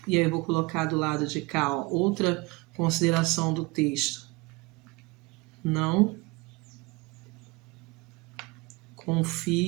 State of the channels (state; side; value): quieter; left; 24.7 dB